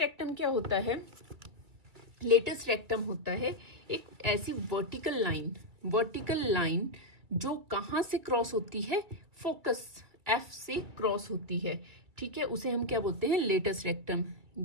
क्या होता है, लेटस रेक्टम होता है एक ऐसी वर्टिकल लाइन वर्टिकल लाइन जो कहाँ से क्रॉस होती है, फोकस एफ से क्रॉस होती है, ठीक है, उसे हम क्या बोलते हैं, लेटस रेक्टम।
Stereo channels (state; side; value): late; left; 2.2 ms